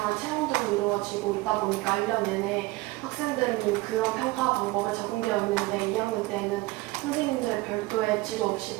체험들로 이루어지고 있다 보니까 1년 내내 학생들은 그런 평가 방법에 적응되어 있는데 2학년 때는 선생님들 별도의 지도 없이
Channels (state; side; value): quieter; left; 20.5 dB